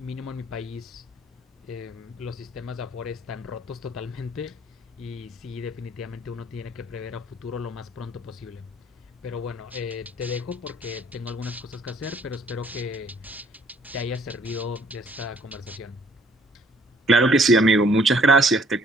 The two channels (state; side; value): normal; both; correlation 0.61